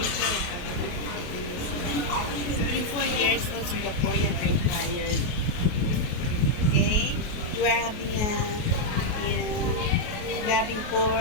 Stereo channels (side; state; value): right; late; 28 ms